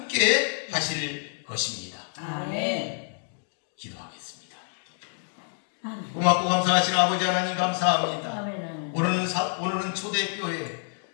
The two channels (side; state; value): right; silent; digital silence